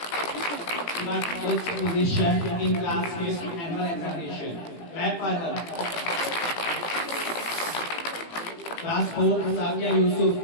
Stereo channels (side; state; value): right; late; 18 ms